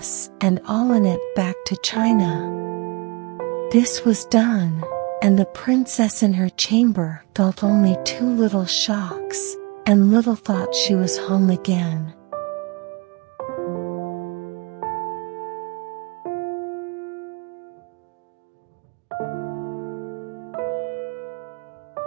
and all in it back to China. This was done, and the princess in her chamber felt only 2 little shocks, and little thought she was home again.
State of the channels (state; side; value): quieter; left; 27.8 dB